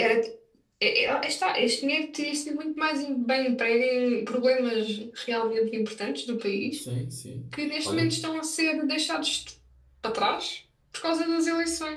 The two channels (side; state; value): both; identical; correlation 1.00